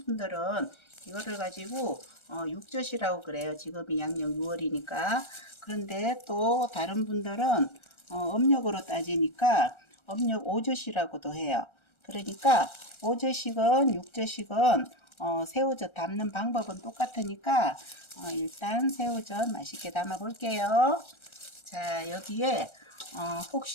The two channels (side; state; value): right; late; 1.3 ms